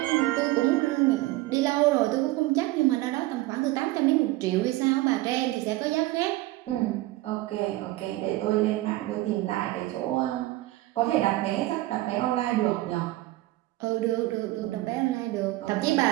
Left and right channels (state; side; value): quieter; left; 18.0 dB